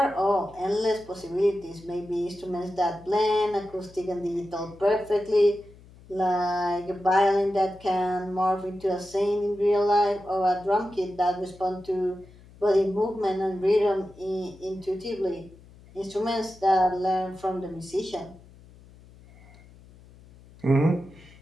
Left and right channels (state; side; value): noise; left; hum, 23 dB below the sound